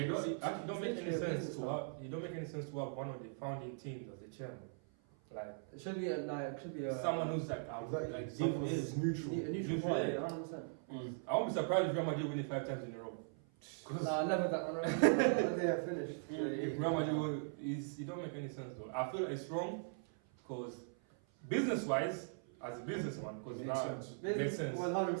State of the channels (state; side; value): silent; left; 51 dB below the other